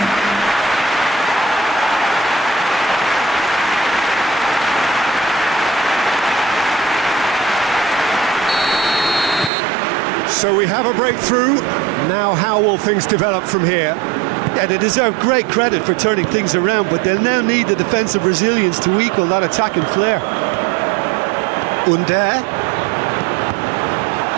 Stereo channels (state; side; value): drops out; left; at 9.5 s